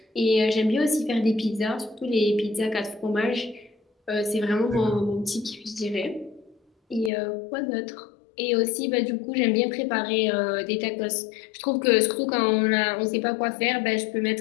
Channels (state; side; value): drops out; right; at 7.1 s